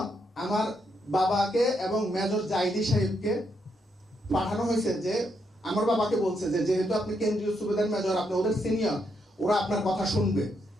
আমার বাবাকে এবং মেজর জাইদি সাহেবকে পাঠানো হয়েছে, যে আমার বাবাকে বলছে যে যেহেতু আপনি কেন্দ্রীয় সুবেদার মেজর, আপনি ওদের সিনিয়র, ওরা আপনার কথা শুনবে।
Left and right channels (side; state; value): both; normal; correlation 0.78